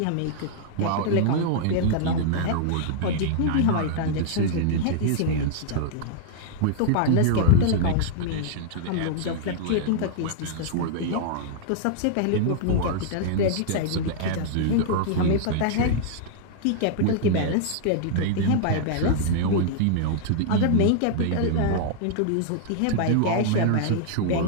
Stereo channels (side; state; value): both; different; correlation -0.01